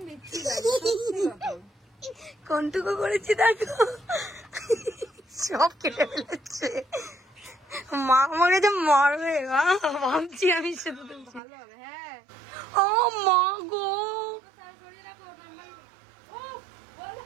বিচ্ছি কোনটুকু করেছি দেখো, সব কেটে ফেলেছে। মা আমাকে যে মারবে ভাবছি আমি শুধু। ভালো হবে। হ্যাঁ ও মা গো,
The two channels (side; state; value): left; drops out; at 11.4 s